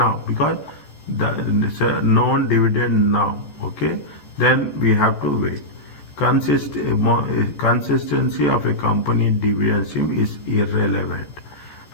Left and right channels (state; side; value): late; right; 14 ms